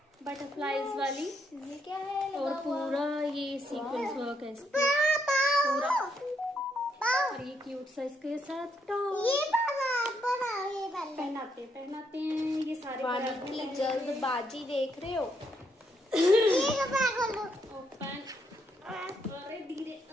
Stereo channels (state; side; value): normal; both; correlation 0.76